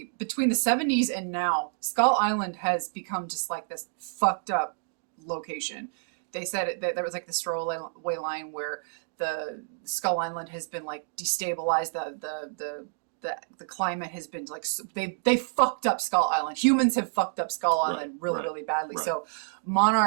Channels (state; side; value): silent; left; digital silence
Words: between the 70s and now, Skull Island has become just like this fucked up location. They said that there was like this throwaway line where the Skull Island has been like destabilized, the climate has been like, they fucked up Skull Island. Humans have fucked up Skull Island really badly. So